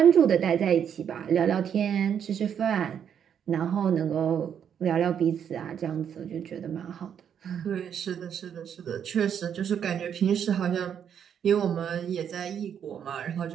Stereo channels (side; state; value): left; quieter; 8.4 dB